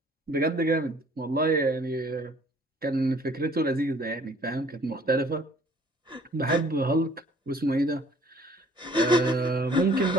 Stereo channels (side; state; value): both; normal; correlation 0.56